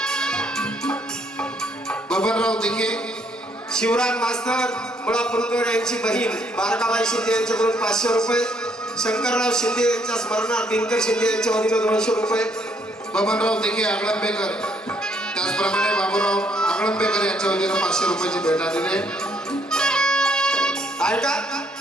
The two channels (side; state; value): both; normal; correlation 0.69